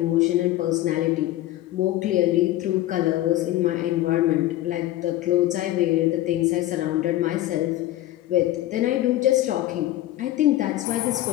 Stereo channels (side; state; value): right; quieter; 15.0 dB